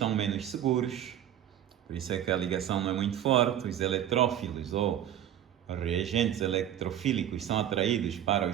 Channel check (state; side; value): quieter; left; 11.0 dB